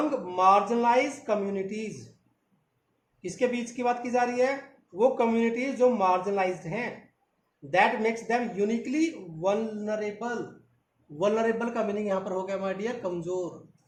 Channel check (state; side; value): identical; both; correlation 1.00